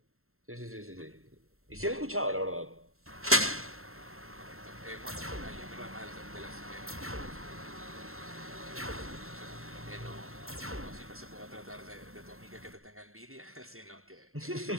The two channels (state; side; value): late; left; 0.62 ms